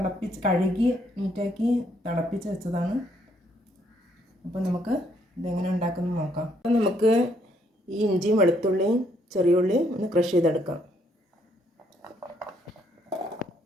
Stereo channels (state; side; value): normal; both; correlation 0.70